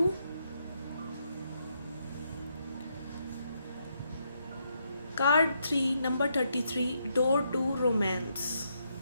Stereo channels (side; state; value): both; inverted; correlation -0.78